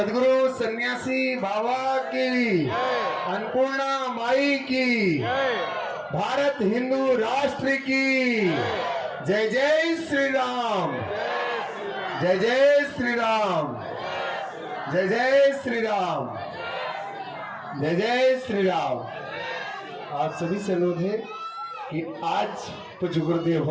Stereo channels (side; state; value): both; identical; correlation 1.00